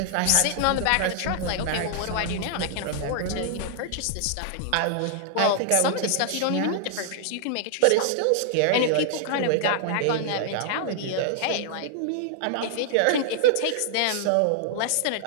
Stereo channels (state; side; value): different; both; correlation -0.01